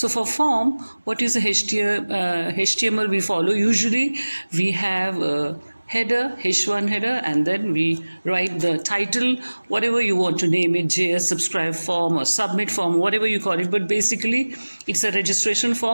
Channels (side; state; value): both; inverted; correlation -1.00